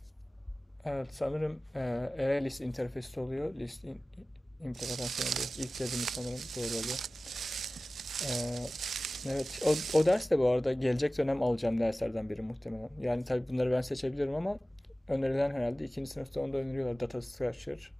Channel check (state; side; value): normal; both; correlation 0.97